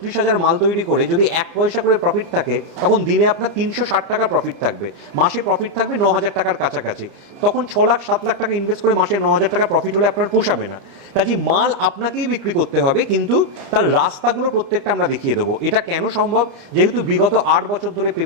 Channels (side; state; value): left; late; 30 ms